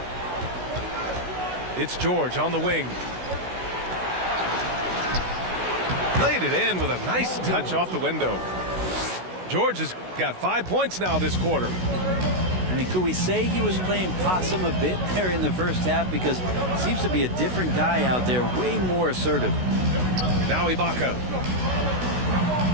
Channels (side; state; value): left; late; 16 ms